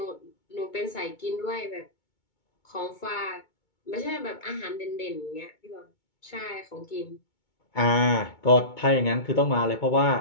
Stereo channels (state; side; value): late; right; 2.2 ms